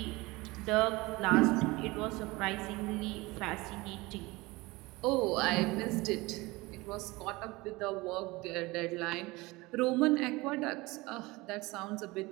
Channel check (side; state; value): left; quieter; 22.2 dB